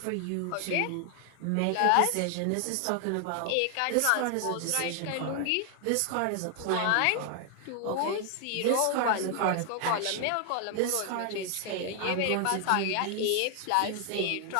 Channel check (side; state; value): both; different; correlation 0.00